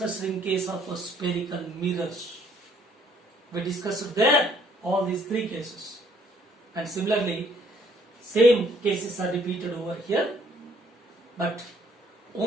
in case of spherical mirrors. We discussed there all these three cases. And similarly, same cases are repeated over here. But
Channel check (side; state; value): both; normal; correlation 0.64